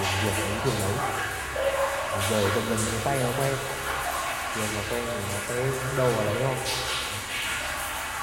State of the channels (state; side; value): identical; both; correlation 1.00